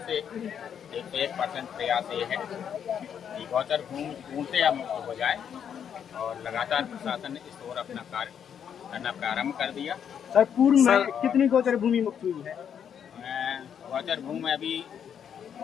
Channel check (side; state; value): right; quieter; 8.3 dB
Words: से 101% प्रयास ये है कि गौचर भूमि पूर्णतया मुक्त हो जाए, और लगातार प्रशासन ने इस ओर अपना कार्य करना प्रारंभ कर दिया। सर पूर्व में कितनी गोचर भूमि मुक्त हुई है? गौचर भूमि अभी